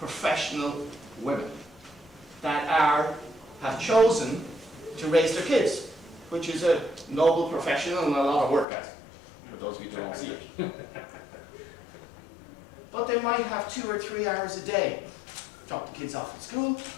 women that have chosen to raise their kids, which is a noble profession and a lot of work, guys, for those of you who don't see it. But they might have 2 or 3 hours a day. Drop the kids off at school,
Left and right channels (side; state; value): right; drops out; at 8.7 s